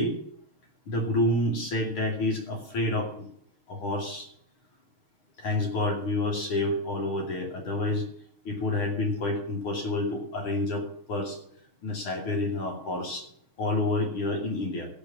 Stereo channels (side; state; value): right; late; 6.4 ms